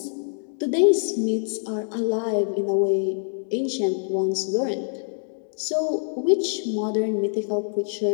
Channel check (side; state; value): right; silent; digital silence